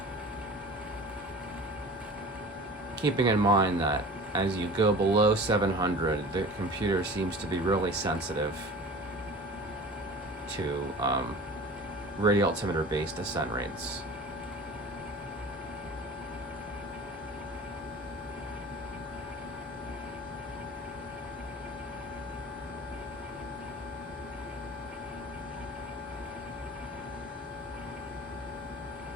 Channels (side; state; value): both; normal; correlation 0.39